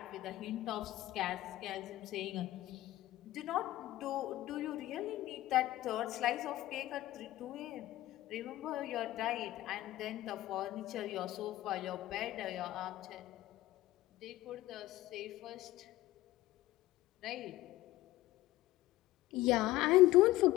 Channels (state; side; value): quieter; right; 16.4 dB